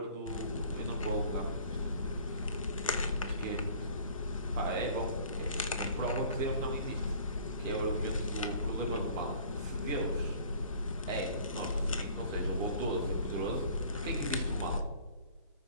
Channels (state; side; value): inverted; both; correlation -0.51